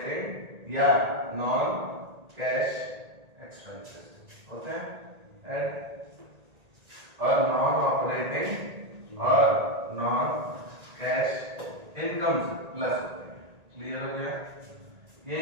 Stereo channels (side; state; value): left; late; 1.8 ms